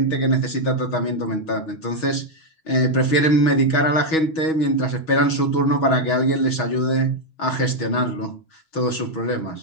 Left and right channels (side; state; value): right; late; 6.3 ms